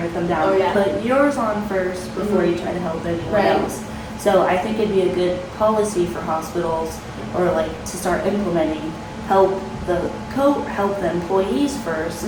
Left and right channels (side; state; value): both; identical; correlation 1.00